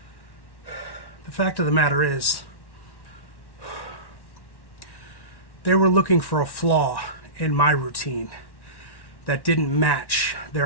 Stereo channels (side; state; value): right; late; 1.1 ms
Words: The fact of the matter is, they were looking for a flaw in my routine that didn't match